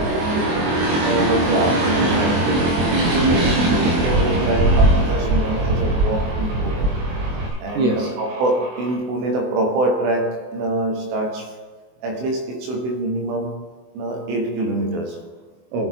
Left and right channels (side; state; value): left; late; 24 ms